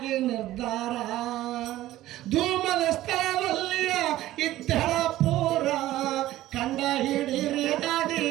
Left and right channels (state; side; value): quieter; left; 15.1 dB